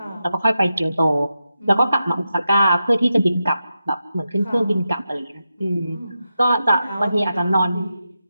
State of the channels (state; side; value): inverted; both; correlation -0.89